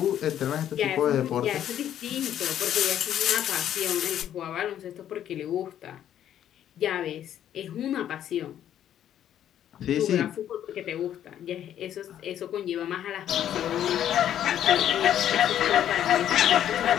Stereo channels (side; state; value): right; quieter; 10.7 dB